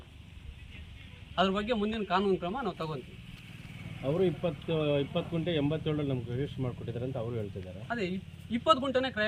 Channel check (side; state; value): both; identical; correlation 1.00